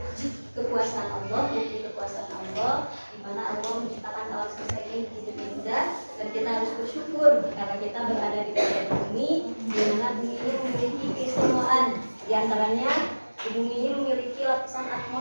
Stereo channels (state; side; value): inverted; both; correlation -1.00